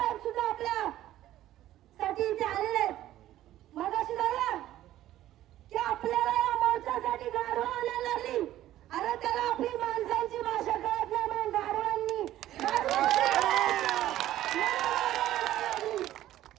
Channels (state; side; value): quieter; left; 13.6 dB